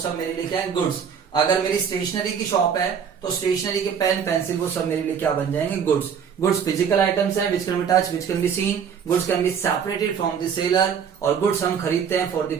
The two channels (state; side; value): quieter; left; 7.3 dB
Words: मेरे लिए क्या है, गुड्स। अगर मेरी स्टेशनरी की शॉप है तो स्टेशनरी के पेन पेंसिल वो सब मेरे लिए क्या बन जाएंगे, गुड्स। गुड्स फिजिकल आइटम्स हैं which can be touch, which can be seen, goods can be separated from the seller, और गुड्स हम खरीदते हैं for the